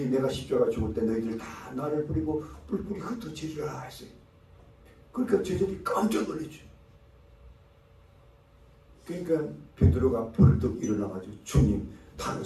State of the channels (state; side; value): identical; both; correlation 1.00